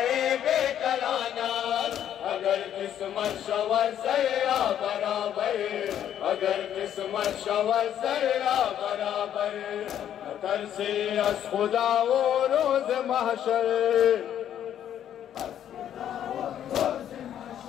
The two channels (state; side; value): quieter; right; 10.3 dB